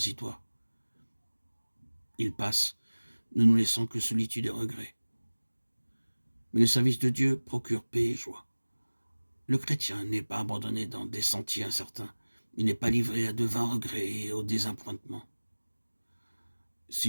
Il passe, ne nous laissant que solitude et regret. Mais le service de Dieu procure paix et joie. Le chrétien n'est pas abandonné dans des sentiers incertains. Il n'est pas livré à de vains regrets et au désappointement.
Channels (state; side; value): inverted; both; correlation -1.00